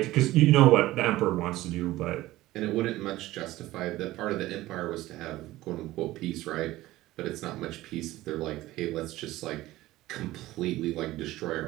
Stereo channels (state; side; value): quieter; left; 16.9 dB